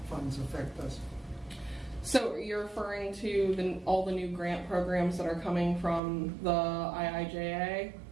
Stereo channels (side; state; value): left; drops out; at 6.0 s